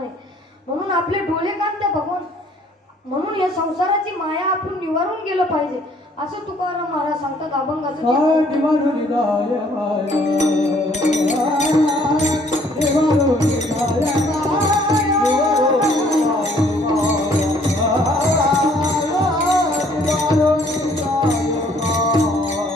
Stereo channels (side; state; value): both; normal; correlation 0.61